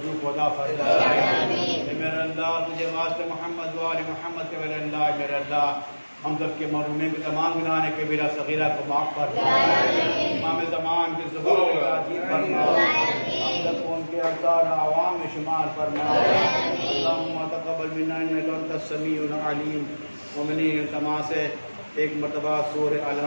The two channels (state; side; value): inverted; both; correlation -1.00